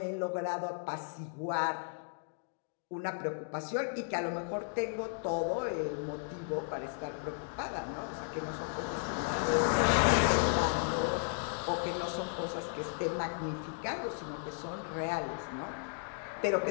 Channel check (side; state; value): right; silent; digital silence